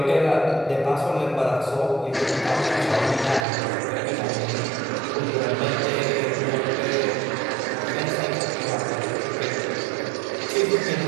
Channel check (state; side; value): drops out; left; at 3.5 s